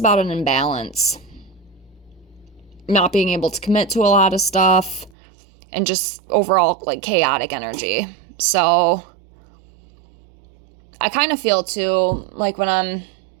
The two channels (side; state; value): left; drops out; at 5.1 s